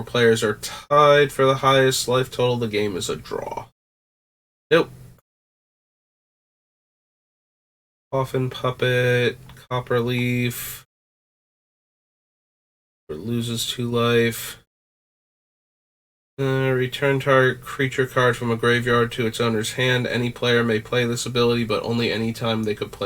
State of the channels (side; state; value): both; identical; correlation 1.00